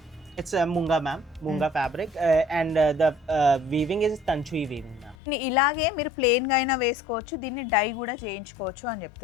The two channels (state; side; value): drops out; right; at 5.2 s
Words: It's a munga, ma'am. Munga fabric, and the weaving is Tanchui weaving, ma'am. ఇలాగే మీరు ప్లెయిన్గా అయినా వేసుకోవచ్చు, దీన్ని డై కూడా చేయించుకోవచ్చు అని